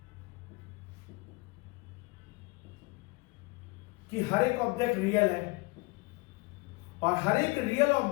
कि हर एक ऑब्जेक्ट रियल है, और हर एक रियल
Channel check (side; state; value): right; quieter; 25.6 dB